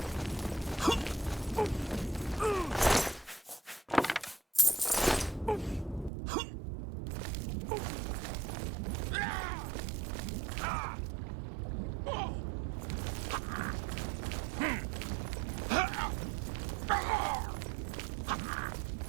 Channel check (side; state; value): left; drops out; at 6.1 s